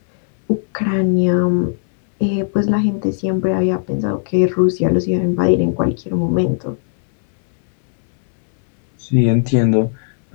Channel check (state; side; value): silent; right; 66 dB below the other